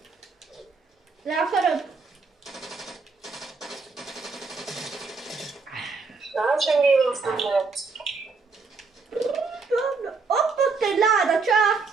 Le akarod? Na, semmivel azt nem lehet. Ott egy láda, csá!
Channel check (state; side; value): quieter; left; 4.4 dB